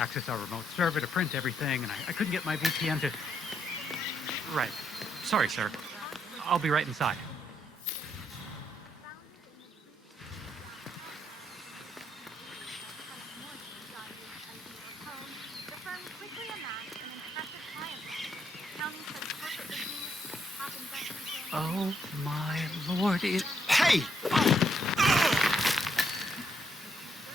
our remote server to print everything, and I couldn't get my VPN to... Right. Sorry, sir. I'll be right inside. Oh my lord, it... Hey!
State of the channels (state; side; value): normal; both; correlation 0.75